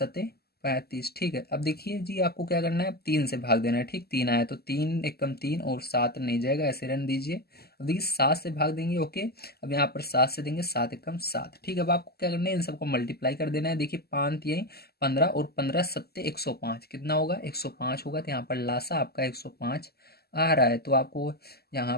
35, ठीक है। अब देखिए जी आपको क्या करना है, अब 3 से भाग देना है, ठीक, 3 आया तो 3 एकम 3 और 7 नहीं जाएगा, ऐसे रन दीजिए। अब देखिए 7 से भाग देंगे, ओके। अब यहाँ पर 7 से देंगे, 7 एकम 7, ठीक है। अब आपको क्या करना है, इन सबको मल्टीप्लाई कर देना है। देखिए 5 तिहाई 15 और 15 सत्ते 105, कितना होगा, 105 होगा। तो यहाँ पर लासा आपका 105 आ रहा है। तो आपको यहाँ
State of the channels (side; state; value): right; late; 0.46 ms